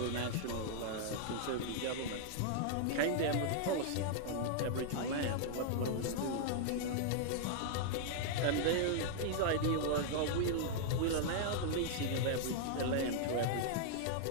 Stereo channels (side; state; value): both; different; correlation -0.01